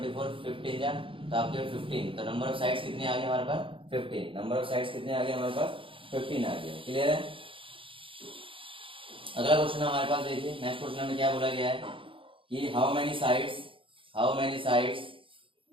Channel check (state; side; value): late; left; 0.25 ms